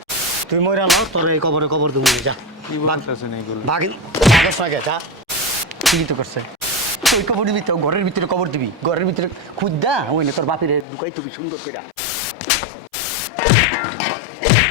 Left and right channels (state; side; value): drops out; right; at 10.9 s